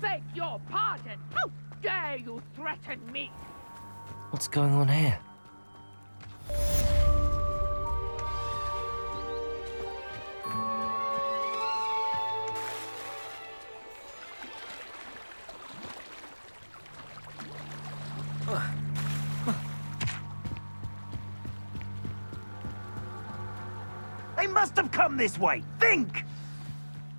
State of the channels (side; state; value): both; inverted; correlation -1.00